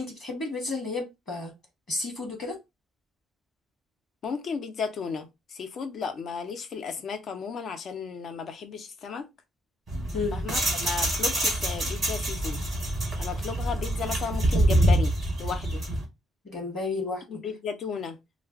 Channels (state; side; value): normal; both; correlation 0.74